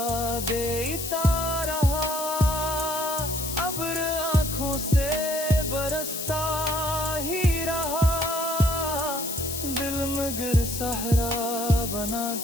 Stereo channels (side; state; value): left; noise; hiss, 5 dB below the sound